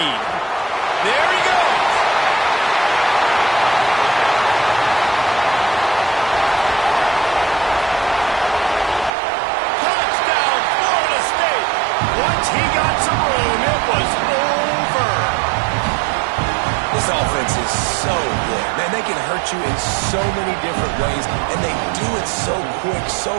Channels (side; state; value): left; drops out; at 9.1 s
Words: There he goes. Touchdown, Florida State. Once he got some room, it was over. This offense is so good. Man, they can hurt you in so many different ways, and they do it so quick, so